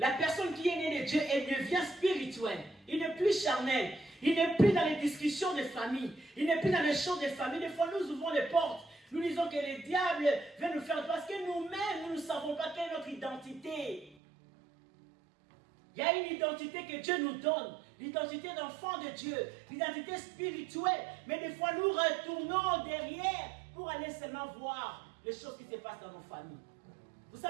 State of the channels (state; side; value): drops out; left; at 14.2 s